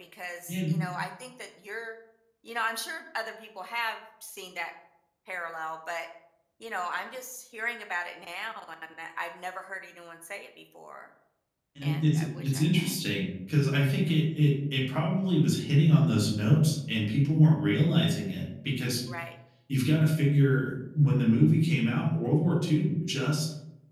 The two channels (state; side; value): identical; both; correlation 1.00